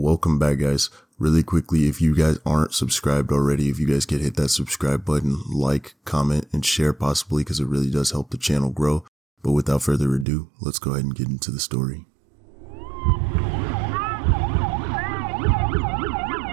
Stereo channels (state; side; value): drops out; left; at 10.2 s